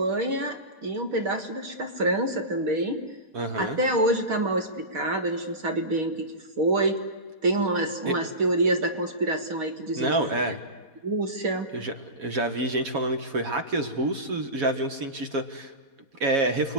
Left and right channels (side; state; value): left; late; 4.1 ms